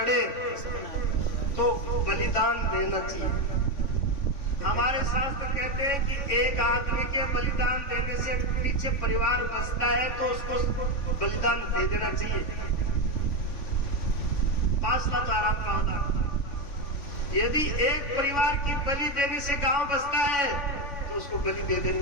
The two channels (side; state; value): right; late; 3.5 ms